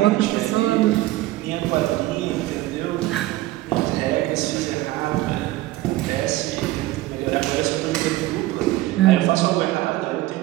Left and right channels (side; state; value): left; quieter; 17.0 dB